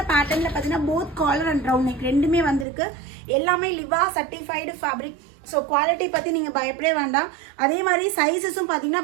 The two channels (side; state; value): left; drops out; at 2.7 s